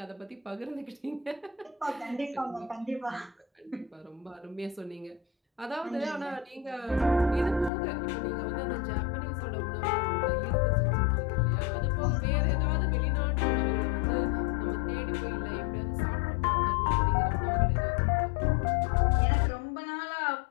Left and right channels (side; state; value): right; drops out; at 7.7 s